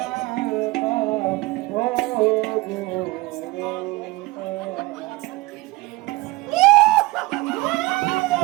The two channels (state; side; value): quieter; left; 21.9 dB